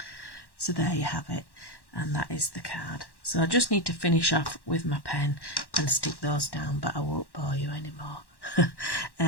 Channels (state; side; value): late; right; 1.1 ms